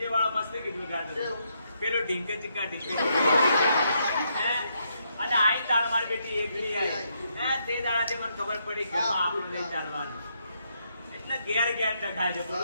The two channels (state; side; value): inverted; both; correlation -0.77